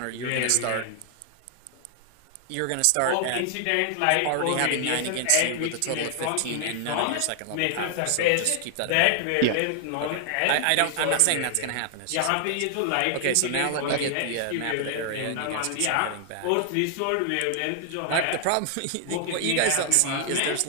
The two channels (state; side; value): different; both; correlation 0.00